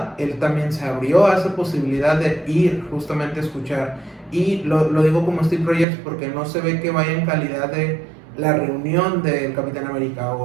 él también se abrió a esa posibilidad de ir justamente a escuchar. Y lo digo como Steve Rogers porque no se ve que vaya en calidad de la reunión del Capitán América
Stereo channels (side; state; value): left; drops out; at 5.9 s